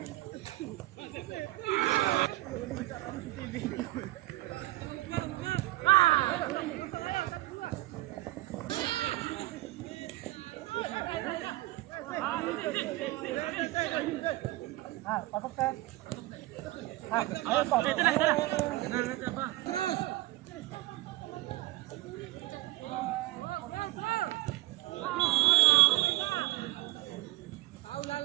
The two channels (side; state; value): left; quieter; 18.4 dB